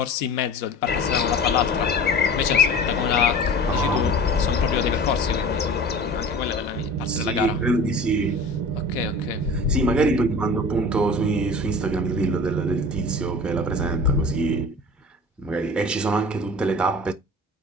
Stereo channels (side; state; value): both; normal; correlation 0.39